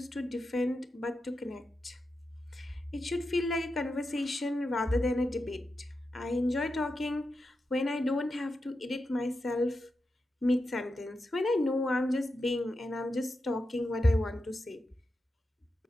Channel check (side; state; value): both; normal; correlation 0.88